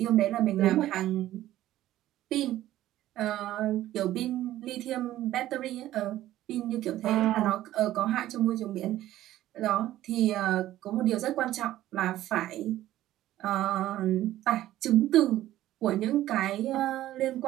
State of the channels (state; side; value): quieter; left; 14.1 dB